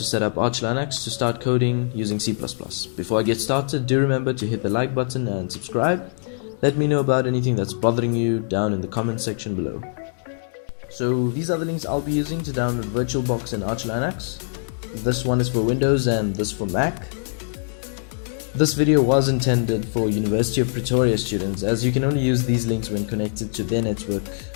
set up Arch Linux to start coding using C++. Before I get started, do remember to hit the like button and subscribe. Let me know about anything that's bothering you down in the comment section below. So these are the links I'll be using to download VirtualBox and Arch Linux. This one is for Windows and this for Mac. This video was intended for University of Pretoria students, as you can only use these links when connected to their network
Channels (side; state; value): right; silent; digital silence